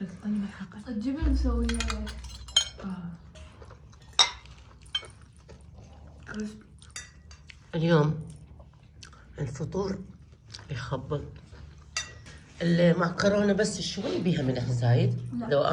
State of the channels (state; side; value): identical; both; correlation 1.00